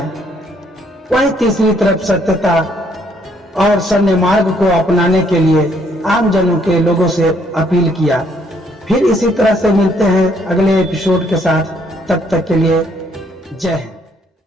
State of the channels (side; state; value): both; normal; correlation 0.68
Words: वहीं तीसरी तरफ सत्यता और सन्य मार्ग को अपनाने के लिए आम जनों के लोगों से अपील किया। फिर इसी तरह से मिलते हैं अगले एपिसोड के साथ, तब तक के लिए जय